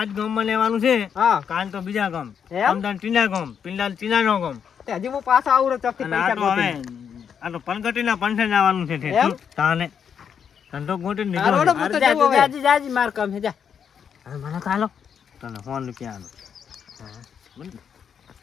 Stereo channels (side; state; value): right; quieter; 7.6 dB